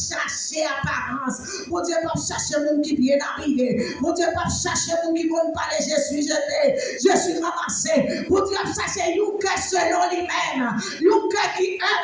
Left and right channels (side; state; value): both; identical; correlation 1.00